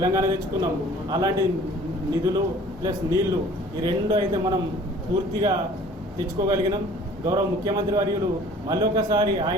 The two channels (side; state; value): both; normal; correlation 0.50